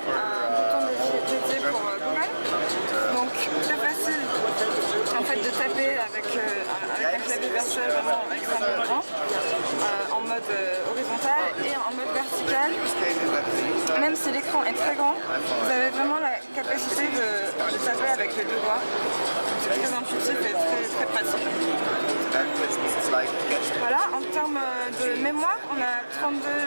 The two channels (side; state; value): both; inverted; correlation -1.00